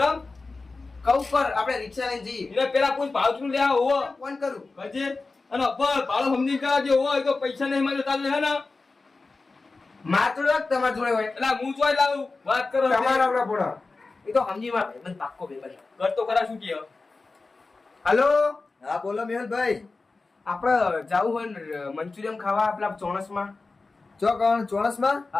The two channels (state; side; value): quieter; right; 3.8 dB